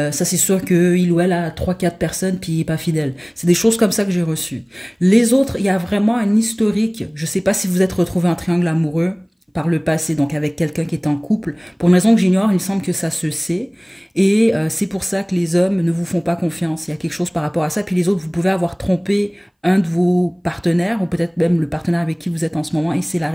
c'est sûr qu'il ou elle a 3-4 personnes puis il n'est pas fidèle. C'est des choses comme ça que j'ai reçues. Les autres, il y a vraiment un historique. Je ne sais pas si vous êtes retrouvé en triangle amoureux par le passé, donc avec quelqu'un qui est en couple. Pour une raison que j'ignore, il semble que ça se sait. Et c'est pour ça que les hommes ne vous font pas confiance. Il y a quelque chose par rapport à ça. Puis les autres, vous pouvez avoir trompé un de vos partenaires, ou peut-être même le partenaire avec qui vous êtes en ce moment, et c'est la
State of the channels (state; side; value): identical; both; correlation 1.00